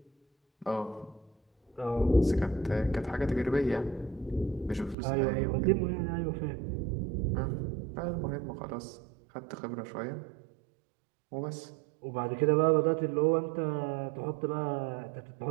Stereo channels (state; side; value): drops out; left; at 5.0 s